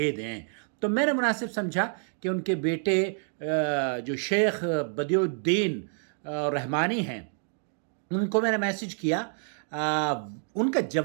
دیں۔ تو میں نے مناسب سمجھا کہ ان کے بیٹے جو شیخ بدیع الدین رحمانی ہیں، ان کو میں نے میسج کیا۔ ان کا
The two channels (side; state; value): left; silent; 59 dB below the other